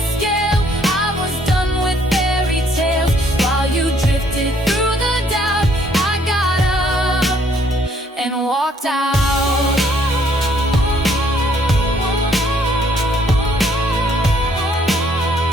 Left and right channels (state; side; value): normal; both; correlation 0.65